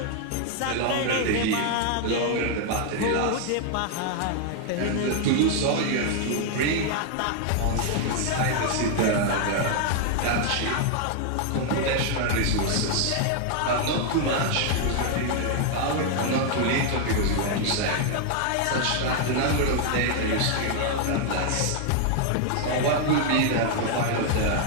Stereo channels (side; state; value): both; different; correlation 0.00